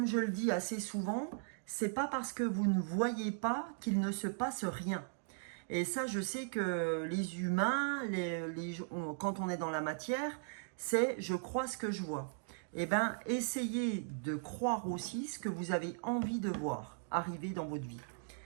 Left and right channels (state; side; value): silent; left; digital silence